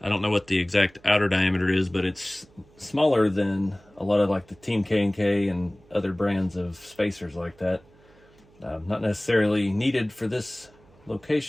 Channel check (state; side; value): noise; right; hum, 28 dB below the sound